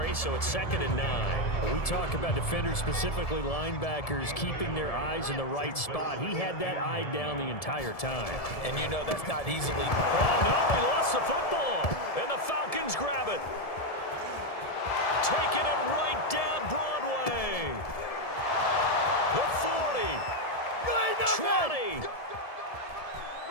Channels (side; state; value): right; late; 1.7 ms